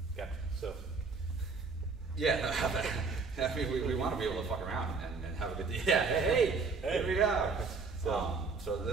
Gotcha. So, yeah, I mean, we want to be able to fuck around and have a good day. Yeah, hey, here we go. So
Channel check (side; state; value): left; quieter; 4.5 dB